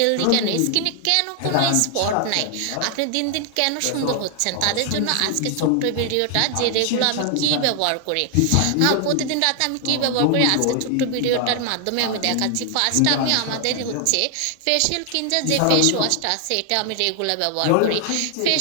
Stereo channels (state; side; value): different; both; correlation 0.00